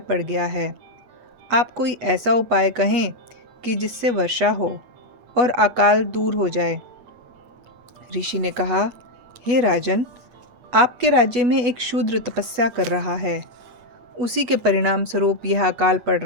गया है। आप कोई ऐसा उपाय कहें कि जिससे वर्षा हो और अकाल दूर हो जाए। ऋषि ने कहा, हे राजन, आपके राज्य में एक शूद्र तपस्या कर रहा है। उसी के परिणाम स्वरूप यह अकाल पड़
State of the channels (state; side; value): late; left; 8.2 ms